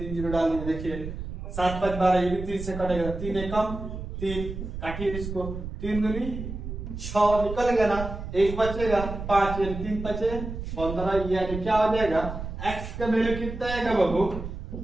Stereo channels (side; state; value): right; noise; rumble, 7 dB below the sound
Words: डाल दीजिए। देखिए 7 5 12, ये भी 3 से कटेगा, 3 एकम 3, काटिए इसको, 3 दूनी 6 निकल गया ना, 1 बचेगा 5 यानी 3 बचे 15, यानी क्या हो जाएगा x का वैल्यू कितना आएगा बाबू